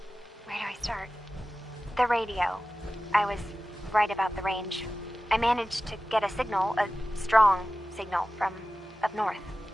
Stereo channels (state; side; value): normal; both; correlation 0.95